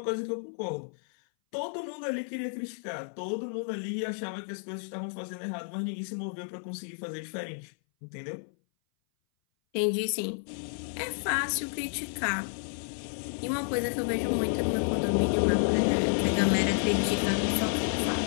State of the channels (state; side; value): silent; right; 57 dB below the other